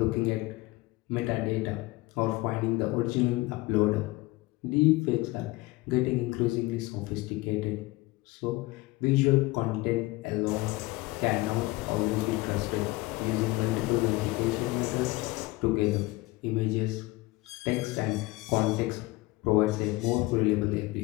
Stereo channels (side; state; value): right; quieter; 20.9 dB